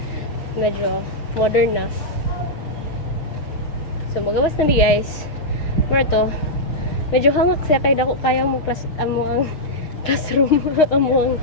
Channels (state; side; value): late; right; 6.4 ms